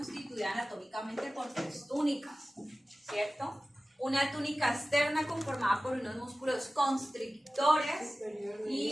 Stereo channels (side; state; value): both; normal; correlation 0.96